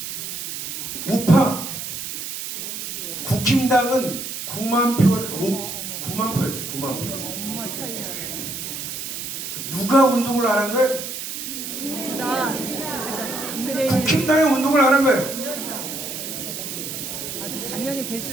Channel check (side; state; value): right; noise; hiss, 6 dB below the sound